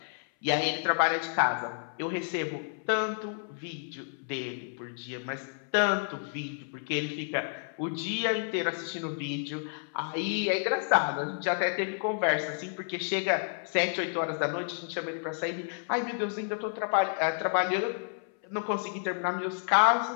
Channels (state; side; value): silent; right; 57 dB below the other